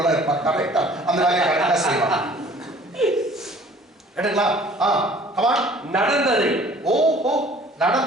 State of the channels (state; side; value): normal; both; correlation 0.52